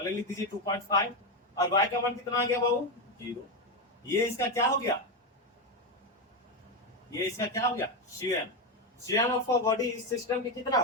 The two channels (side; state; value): both; normal; correlation 0.10